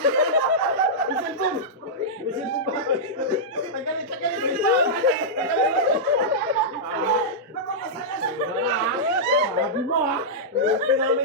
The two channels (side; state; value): both; normal; correlation -0.11